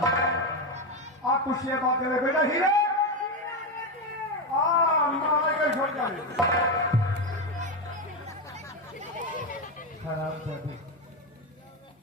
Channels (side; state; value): both; normal; correlation 0.12